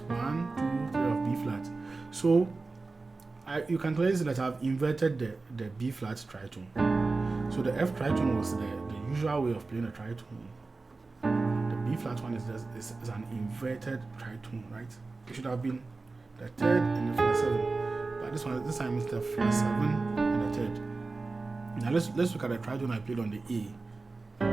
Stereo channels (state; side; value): quieter; left; 3.7 dB